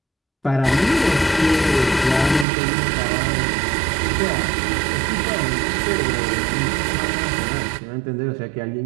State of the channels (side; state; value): left; drops out; at 2.5 s